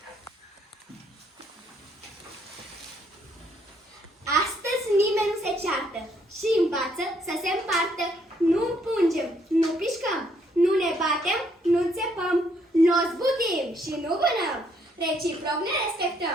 Astăzi nimeni nu se ceartă și învață să se împartă. Nu împungem, nu pișcăm, nu ne batem, nu țepăm, nu zbutim și nu vânăm. Reciproc ne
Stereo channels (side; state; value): both; normal; correlation 0.70